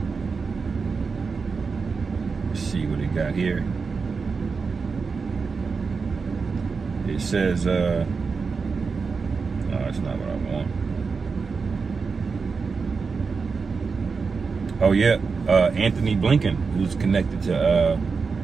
Let's see what he got here. It says, no, that's not what I want. Oh yeah, Anthony Blinken, who's connected to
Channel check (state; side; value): quieter; left; 4.9 dB